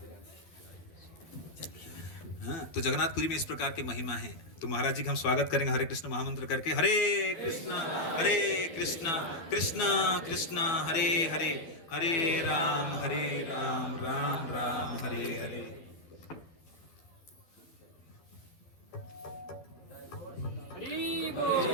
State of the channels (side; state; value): right; late; 12 ms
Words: तो जगन्नाथपुरी में इस प्रकार की महिमा है। तो महाराज जी का हम स्वागत करेंगे हरे कृष्ण महामंत्र करके। हरे कृष्ण कृष्ण कृष्ण हरे हरे, हरे राम राम राम हरे हरे।